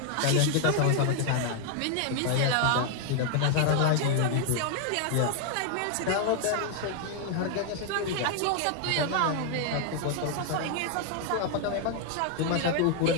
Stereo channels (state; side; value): different; both; correlation 0.00